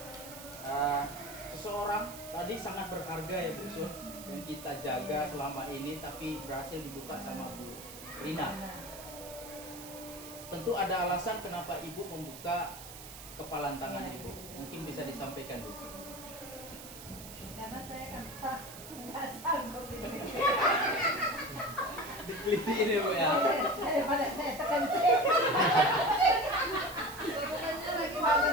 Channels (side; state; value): right; noise; hiss, 14 dB below the sound